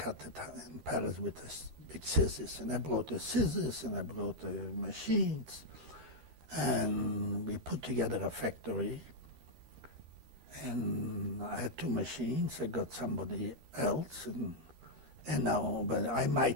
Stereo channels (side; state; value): left; late; 13 ms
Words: it in Paris with the big scissors, and I brought the scissors, and I brought the machines, and we put together a factory. And I had 2 machines. I got somebody else, and now, but I